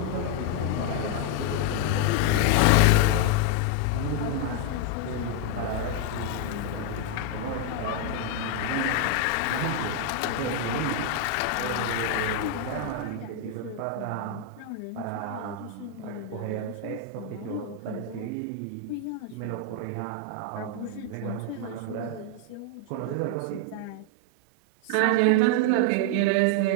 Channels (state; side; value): different; both; correlation 0.00